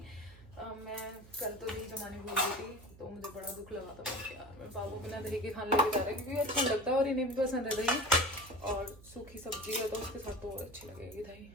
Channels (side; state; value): right; noise; hum, 20 dB below the sound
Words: मैं कल तो दही जमाने भूल गई थी, तो मुझे बड़ा दुख लगा था कि यार मेरे बाबू बिना दही के खाने लेके जा रहा है, क्योंकि अच्छा लगता है और इन्हें भी पसंद है दही, और सूखी सब्जी है तो उसके साथ तो और अच्छी लगेगी दही।